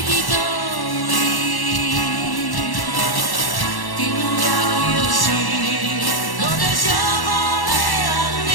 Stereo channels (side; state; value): right; late; 1.1 ms